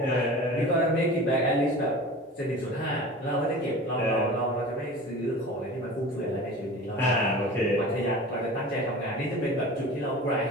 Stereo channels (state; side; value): normal; both; correlation 0.37